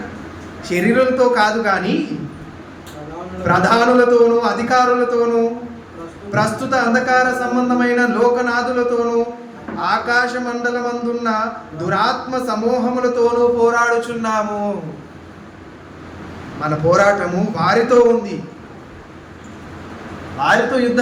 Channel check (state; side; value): identical; both; correlation 1.00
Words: శరీరాలతో కాదు కానీ ప్రధానులతోనూ అధికారులతోనూ ప్రస్తుత అంధకార సంబంధమైన లోకనాథులతోనూ ఆకాశ మండలమందున్న దురాత్మ సమూహములతోనూ పోరాడుచున్నాము. మన పోరాటము వారితో ఉంది. వారితో